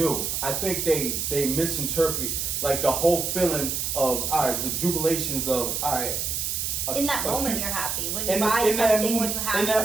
I think they misinterpret like the whole feeling of all right, the jubilations of all right, In that moment, cute- you're happy. When you buy something, when you have in that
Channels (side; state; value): right; noise; hiss, 1 dB below the sound